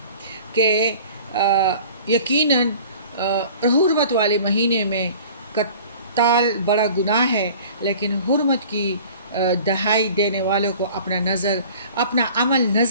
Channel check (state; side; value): inverted; both; correlation -0.45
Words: کہ یقیناً حرمت والے مہینے میں قتال بڑا گناہ ہے، لیکن حرمت کی دہائی دینے والوں کو اپنا عمل